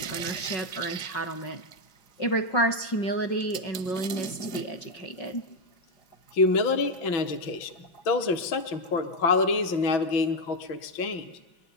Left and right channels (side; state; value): right; late; 5.4 ms